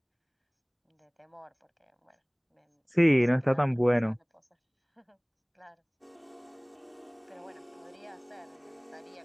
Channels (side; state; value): both; identical; correlation 1.00